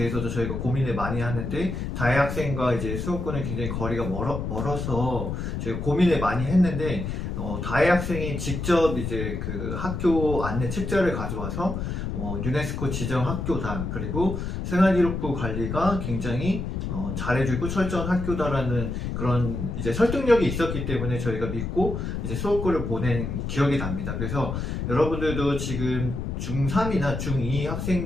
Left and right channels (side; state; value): left; noise; rumble, 4 dB below the sound